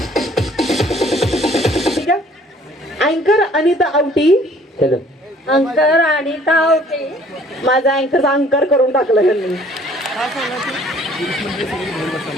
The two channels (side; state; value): both; normal; correlation 0.57